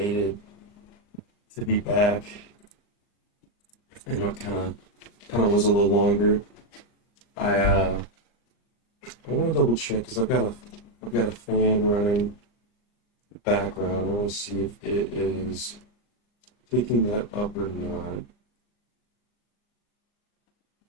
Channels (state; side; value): late; right; 39 ms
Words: to be back. I know it kind of was a little longer. I want to double check because I've got a fan running in the background. I want to see if it is picking that up or not.